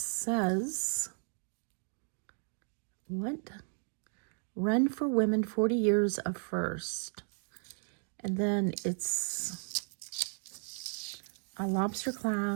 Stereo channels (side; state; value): left; silent; 55 dB below the other